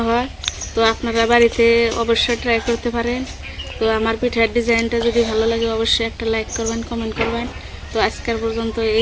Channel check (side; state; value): both; identical; correlation 1.00